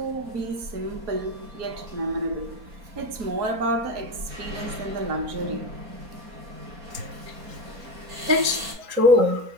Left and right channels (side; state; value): left; late; 4.3 ms